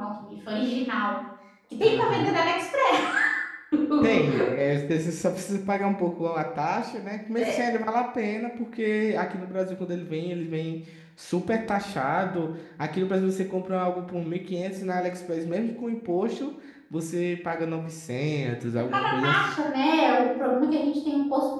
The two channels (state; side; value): identical; both; correlation 1.00